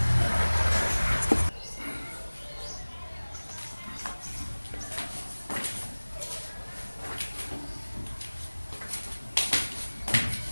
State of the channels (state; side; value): inverted; both; correlation -1.00